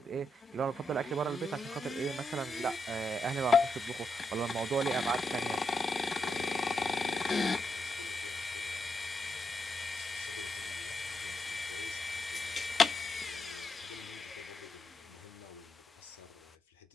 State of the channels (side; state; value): both; normal; correlation 0.83